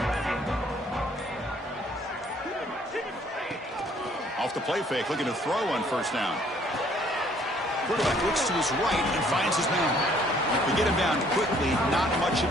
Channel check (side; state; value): both; normal; correlation 0.61